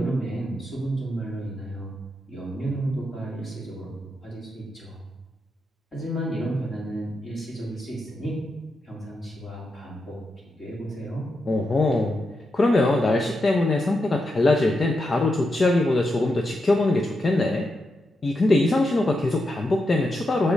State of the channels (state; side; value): normal; both; correlation 0.85